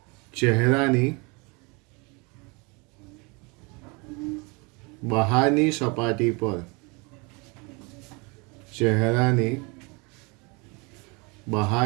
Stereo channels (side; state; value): left; quieter; 29.3 dB